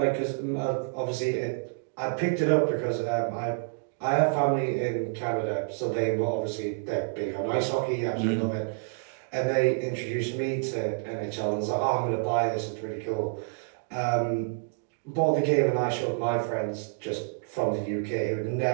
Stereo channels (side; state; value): left; silent; digital silence